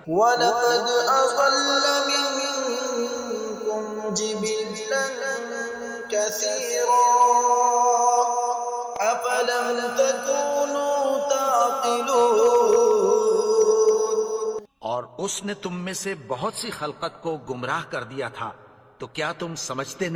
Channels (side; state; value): both; identical; correlation 1.00